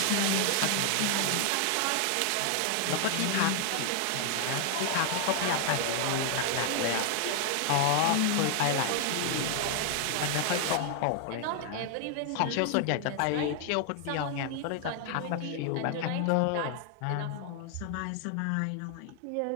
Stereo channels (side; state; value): both; different; correlation 0.00